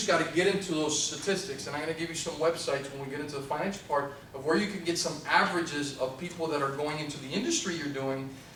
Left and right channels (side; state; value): both; identical; correlation 1.00